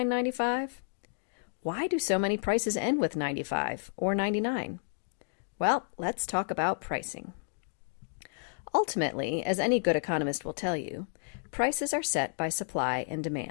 Why do so many prices end with 95 or 99? Well, let's talk about pricing. Ultimately, as any good economist will tell you, prices are set by supply and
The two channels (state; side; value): silent; right; digital silence